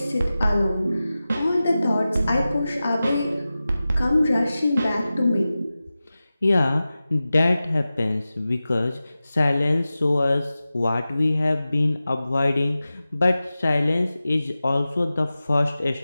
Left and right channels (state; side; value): inverted; both; correlation -0.95